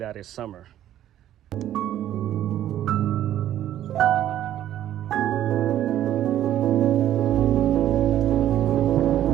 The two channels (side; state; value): left; quieter; 12.0 dB